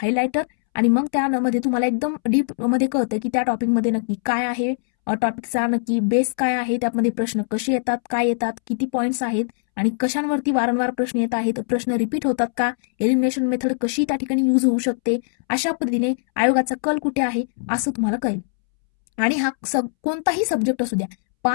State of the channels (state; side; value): silent; right; 65 dB below the other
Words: आणि मग त्यामध्ये तुम्हाला एकदम डीप मध्ये कळतं की त्या टॉपिकमध्ये नक्की काय आहे, टॉपिकचा नक्की बेस काय आहे, त्यामध्ये प्रश्न कसे येतात, काय येतात, किती पॉईंट्स आहेत आणि कशांवरती वारंवार प्रश्न येत आहेत, प्रश्न रिपीट होतात का, एलिमिनेशन मेथड कशी त्या ठिकाणी यूज होऊ शकते, अशा पद्धतीने आयोगाचा कल कुठे आहे असं तुम्हाला कळेल. आणि हा कोणताही सब्जेक्ट असू द्या,